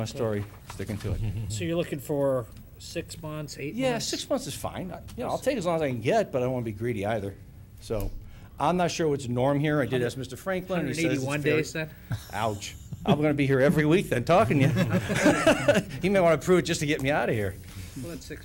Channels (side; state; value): both; identical; correlation 1.00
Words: story, sticking to it. So you're looking for 6 months, 8 Yeah, months? 6 months is fine. I'll take as long as I can get, but I don't want to be greedy either. So, I'm not sure what's the norm here. I did ask Mr. Franklin, and he says it's 181 fair. days then? Ouch. I'm going to be here every week then, talking to you. He may want to prove it just to get me out of here. Well, that's 6